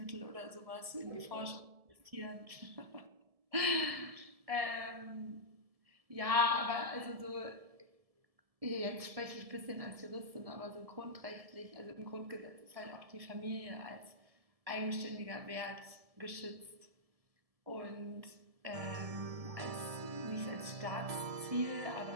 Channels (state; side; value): late; left; 1.7 ms